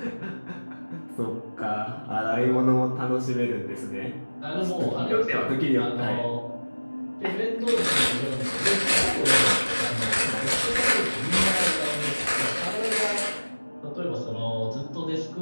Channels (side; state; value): both; inverted; correlation -1.00